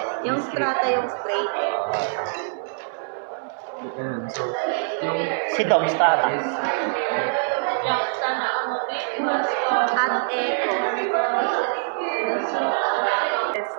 Yung strata, yung straight. ganun. So, yung Si Dom Strata. is, At echo.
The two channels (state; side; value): silent; left; 63 dB below the other